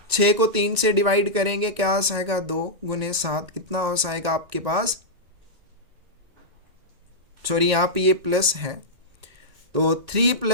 6 को 3 से डिवाइड करेंगे क्या आ जाएगा 2 गुने 7। कितना हो जाएगा आपके पास, सॉरी यहाँ पे ये प्लस है तो 3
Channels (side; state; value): left; late; 1.9 ms